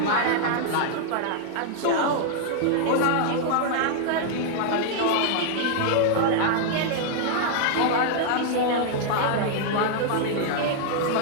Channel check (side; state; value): both; different; correlation -0.01